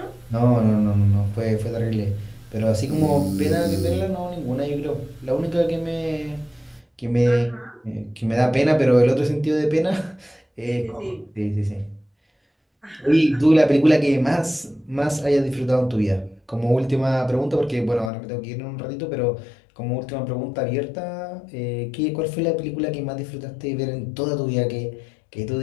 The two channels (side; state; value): right; drops out; at 18.1 s